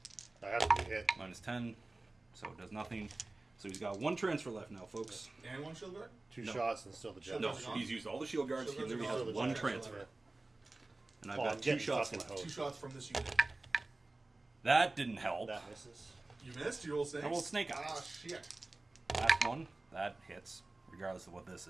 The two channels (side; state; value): left; quieter; 3.0 dB